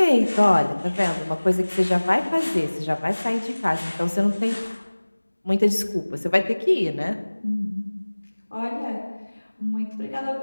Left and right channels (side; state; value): both; inverted; correlation -1.00